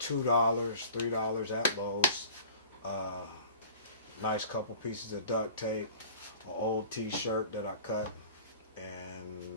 $3 at Lowe's. Nice couple pieces of duct tape, an old t-shirt that I cut,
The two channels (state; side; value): inverted; both; correlation -0.43